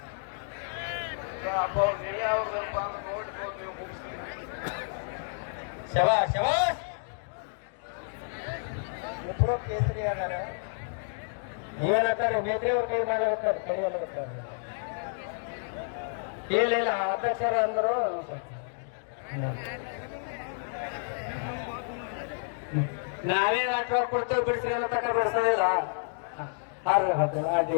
ಅಪ್ಪ ಅವ್ರು ನೀವೇ ಅವ್ರದಪ್ಪ ಅಂತ ನೋಡ್ಬೋದು ನೀವು ಮುಗಿಸ್ತೀವಿ. ಶಬಾಷ್ ಶಬಾಷ್. ಇಬ್ಬರು ಕೇಸರಿ ಆಗಾರ. ಏನಂತಾರೆ ಮೇತ್ರಿ ಅವ್ರ ಕೈ ಮಾಡಬೇಕಾರೆ ಕಡಿಯಲ್ಲ. ಇಲ್ಲ ಅಧ್ಯಕ್ಷರ ಅಂದರು ನಾವೇ ನಾಟಕ ಕೊಡ್ತೇವೆ ಬಿಡಿಸ್ರಿ ಅನ್ನೋ ತಕ್ಕ ಬಿಡಿಸೋದಿಲ್ಲ. ಅಡ್ಡಿ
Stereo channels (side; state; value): right; silent; digital silence